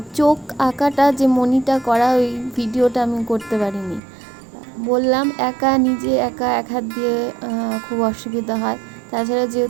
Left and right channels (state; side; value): drops out; left; at 4.0 s